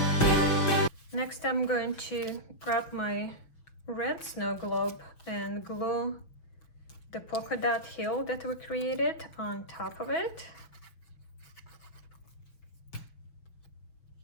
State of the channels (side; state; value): right; late; 6.1 ms